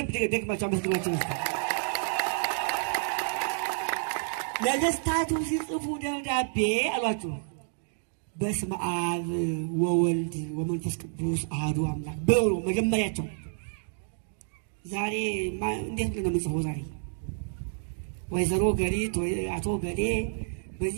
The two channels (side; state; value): left; silent; digital silence